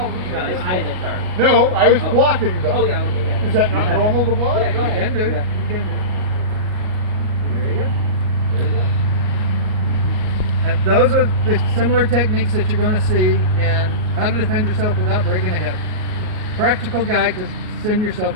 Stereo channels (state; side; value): late; left; 38 ms